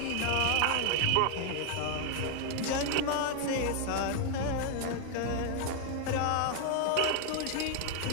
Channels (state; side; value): different; both; correlation 0.00